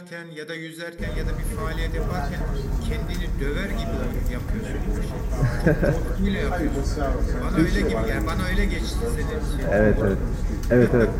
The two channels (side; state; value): both; identical; correlation 1.00